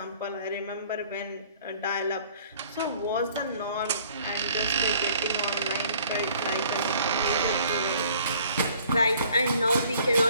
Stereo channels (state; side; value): inverted; both; correlation -0.56